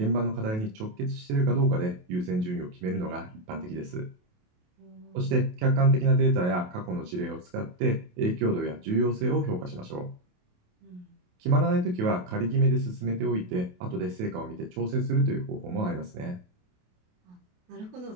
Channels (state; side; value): late; left; 28 ms